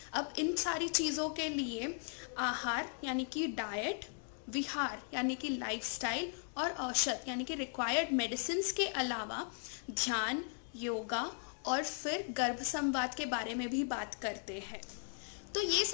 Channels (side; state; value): right; silent; 53 dB below the other